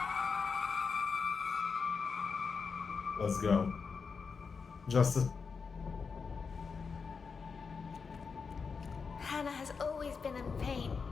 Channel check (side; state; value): right; quieter; 5.3 dB